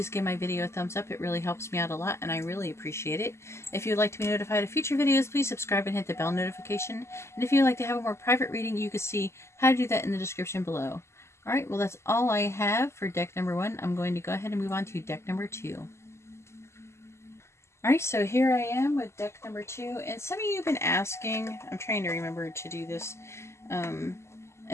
give my video a thumbs up. It really helps me out a lot, and I really appreciate it. If you would like to be notified of future videos, please subscribe and hit the bell notification. And if you would like to have a more private reading, you can see how to do that in the description below. Alright, well that's all I have for deck number 1. I'm going to go ahead and move on to deck number 2. Alright, so here I am with deck number 2. And some of you have been asking, I'm trying to remember to do this, and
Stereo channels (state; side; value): late; right; 0.13 ms